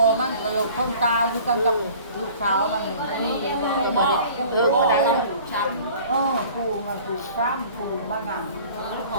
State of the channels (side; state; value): both; inverted; correlation -0.47